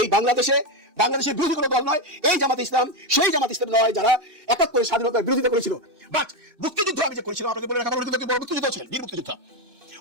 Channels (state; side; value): late; left; 2.6 ms